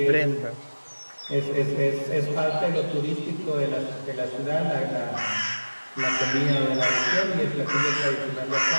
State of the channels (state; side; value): inverted; both; correlation -1.00